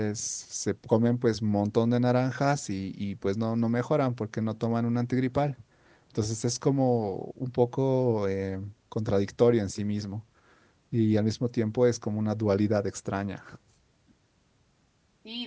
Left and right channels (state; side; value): identical; both; correlation 1.00